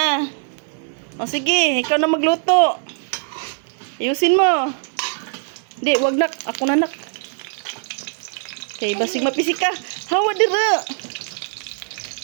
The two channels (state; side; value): silent; left; 58 dB below the other